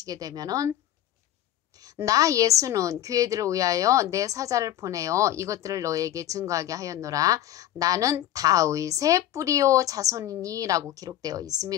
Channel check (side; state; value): right; quieter; 12.7 dB